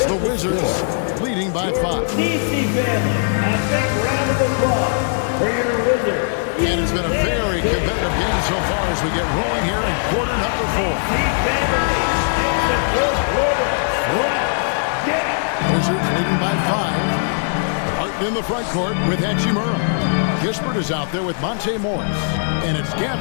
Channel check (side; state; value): right; silent; digital silence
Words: the Wizards leading by 5. DC fans, a big round of applause for your Wizards. And it's been a very competitive game so far as we get rolling here in quarter number 4. Wizards leading by 5. Barton in the front court with Hachimura. Kispert is out there with Monte Morris. And it's